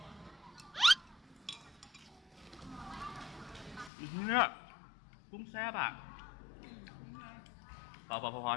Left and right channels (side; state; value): right; drops out; at 3.9 s